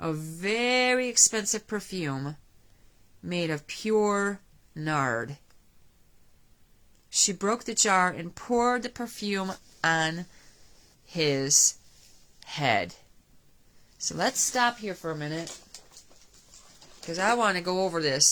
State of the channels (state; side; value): identical; both; correlation 1.00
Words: very expensive perfume made of pure nard. She broke the jar and poured the perfume on his head. So let's stop here for a minute, because I want to go over